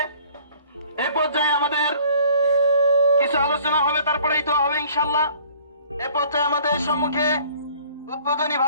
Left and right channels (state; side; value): inverted; both; correlation -0.54